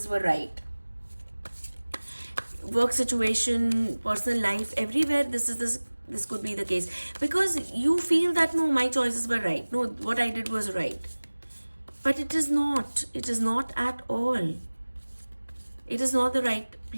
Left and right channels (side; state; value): both; inverted; correlation -1.00